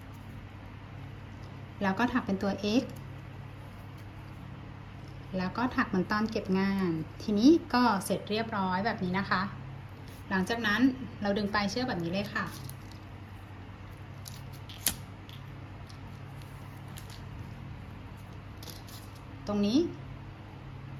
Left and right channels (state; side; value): identical; both; correlation 1.00